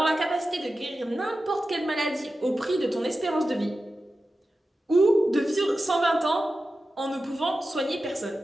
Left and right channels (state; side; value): normal; both; correlation 0.93